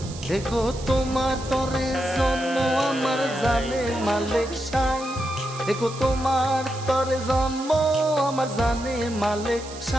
এগো তোমার তরে জন্ম আমার জানে মালিক সাই। এগো তোমার তরে জন্ম আমার জানে মালিক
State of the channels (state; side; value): noise; right; hiss, 15 dB below the sound